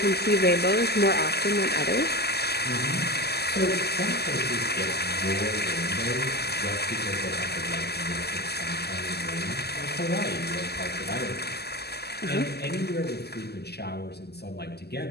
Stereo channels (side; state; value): right; late; 0.47 ms